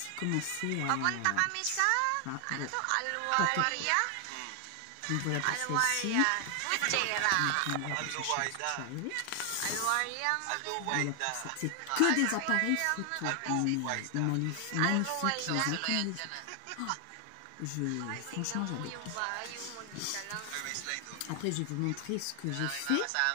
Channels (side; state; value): both; different; correlation 0.00